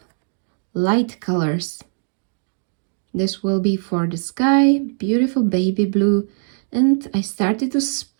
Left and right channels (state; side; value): silent; left; digital silence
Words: light colors. This will be for the sky, beautiful baby blue, and I started to